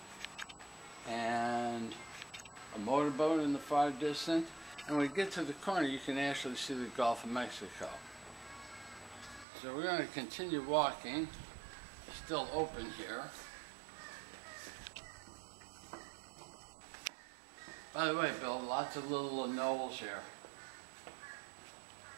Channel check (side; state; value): left; drops out; at 9.5 s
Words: and a motorboat in the far distance. And when we get to the corner, you can actually see the Gulf of Mexico. So we're going to continue walking. It's still open here. By the way, Bill, lots of little knolls here.